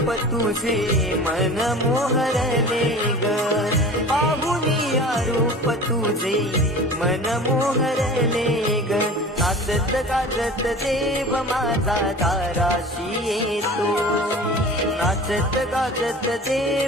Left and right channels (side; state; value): both; normal; correlation 0.39